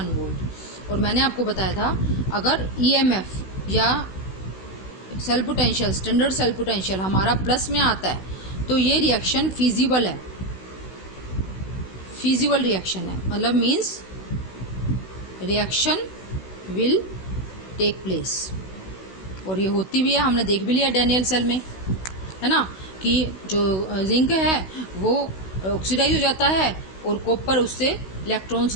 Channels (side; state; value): right; late; 16 ms